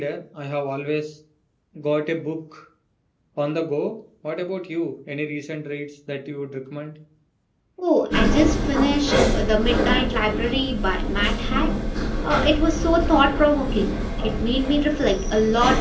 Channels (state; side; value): identical; both; correlation 1.00